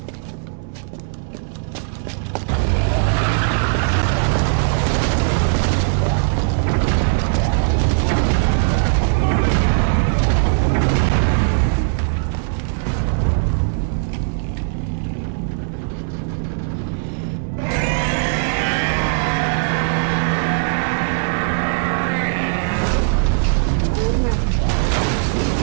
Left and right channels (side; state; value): left; silent; 66 dB below the other